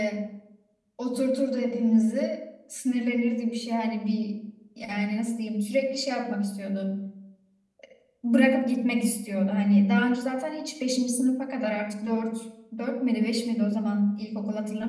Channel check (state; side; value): identical; both; correlation 1.00